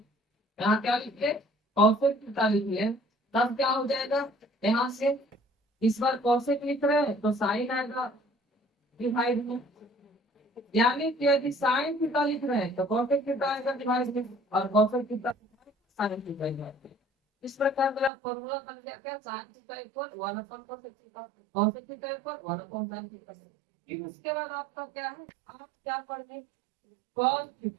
यहाँ क्या लिखिए, कॉसेक थीटा लिखिए, तब क्या हो जाएगा, यहाँ से इस बार कॉसेक लिख रहे हैं तो साइन आएगा डिवाइड में, यानी कि यदि साइन थीटा लिख रहे हैं तो कॉसेक थीटा आएगा डिवाइड में, और cosec theta sine theta divide में। इस प्रकार मेरा फॉर्मूला बन गया क्या, sine theta equal one upon cosec theta, cosec theta equal one upon sine theta. फिर उसके बाद आपका क्या है, आप क्या पढ़े, कॉस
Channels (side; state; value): left; drops out; at 18.1 s